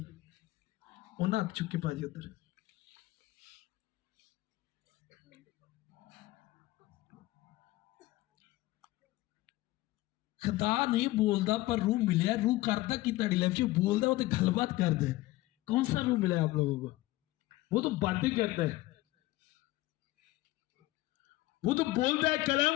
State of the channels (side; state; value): right; quieter; 18.1 dB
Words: उन्हें हाथ चुके भाजी उधर। खुदा नहीं बोलता पर रूह मिले। रूह करता कि ताड़ी लाइफ में बोलता, वो तो गलबात करता है। कौन सा रूह मिला है आप लोगों को? वो तो बातें करता है, वो तो बोलता है,